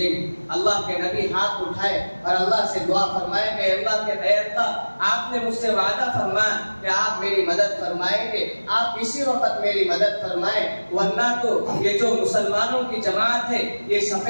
گے۔ اللہ کے نبی ہاتھ اٹھائے اور اللہ سے دعا فرمائے کہ اللہ کے اے اللہ، آپ نے مجھ سے وعدہ فرمایا کہ آپ میری مدد فرمائیں گے، آپ اسی وقت میری مدد فرمائیں، ورنہ تو یہ جو مسلمانوں کی جماعت ہے یہ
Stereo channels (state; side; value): inverted; both; correlation -1.00